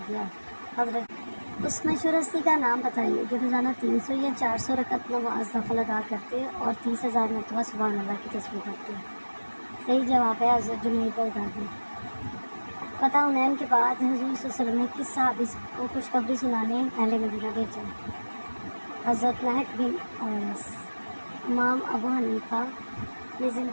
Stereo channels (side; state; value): both; inverted; correlation -1.00